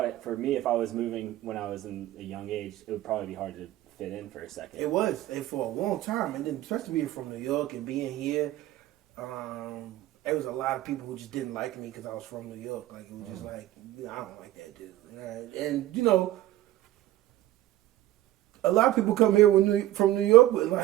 for me, if I was moving when I was in a young age, it would probably be hard to fit in for a second. It was, and for a long time, and then especially being from New York and being here, there was a lot of people who just didn't like me because I was from New York. Like, it was just like, I don't like that dude. And, you know, a lot of people come here from New York with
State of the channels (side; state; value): left; quieter; 14.8 dB